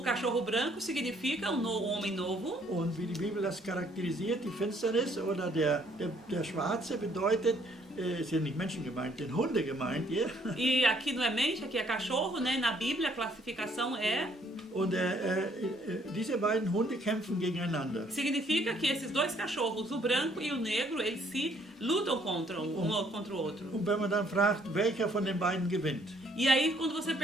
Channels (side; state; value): both; normal; correlation 0.65